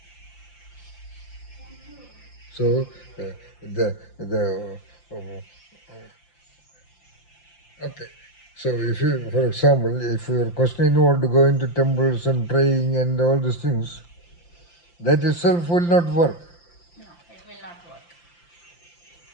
So, the okay. So if you, for example, if your question involved going to temples and praying and all these things, that itself will not work. No, it will not work.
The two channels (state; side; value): late; right; 5.8 ms